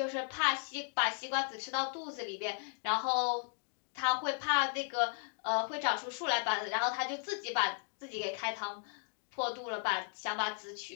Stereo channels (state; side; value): silent; right; 54 dB below the other